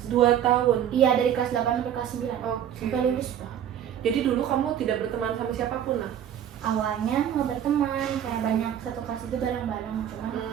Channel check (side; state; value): left; quieter; 9.8 dB